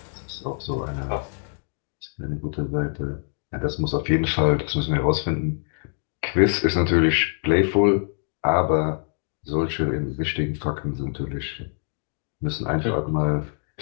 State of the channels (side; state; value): right; silent; 58 dB below the other